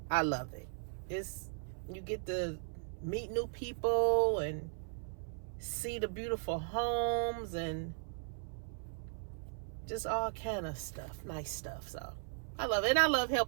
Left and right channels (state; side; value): silent; left; 53 dB below the other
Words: I love it. You get to meet new people and see the beautiful homes and just all kind of stuff, nice stuff. So I love it, and I love